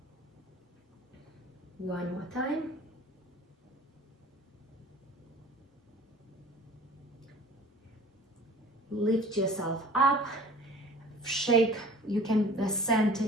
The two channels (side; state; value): both; normal; correlation 0.45